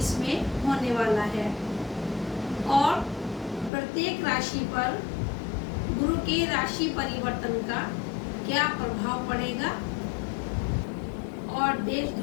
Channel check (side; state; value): right; drops out; at 3.7 s